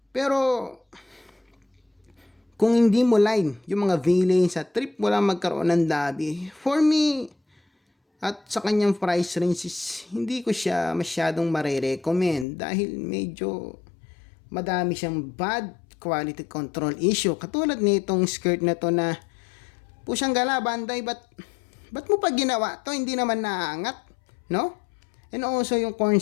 Pero, kung hindi mo line yung mga villain sa trip mo lang magkaroon ng Dabi, for me, at sa kanyang price range is, hindi ko siya masyadong marirecommend dahil medyo madami siyang bad quality control issue. Katulad nitong skirt na to na pusyang gala, Bandai, ba't mo pa ginawa to? Hindi naman naangat, no? And also, yung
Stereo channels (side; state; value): right; drops out; at 12.5 s